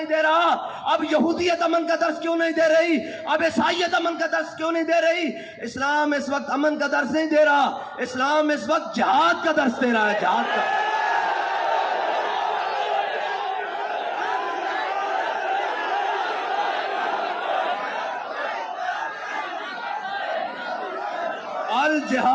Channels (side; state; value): both; identical; correlation 1.00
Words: دے رہا اب یہودیت امن کا درس کیوں نہیں دے رہی اب عیسائیت امن کا درس کیوں نہیں دے رہی. اسلام اس وقت امن کا درس نہیں دے رہا اسلام اس وقت جہاد کا درس دے رہا ہے جہاد کا.